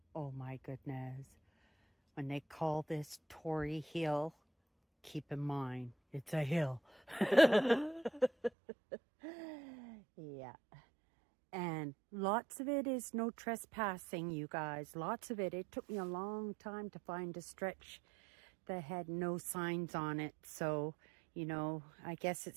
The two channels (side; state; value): left; drops out; at 8.5 s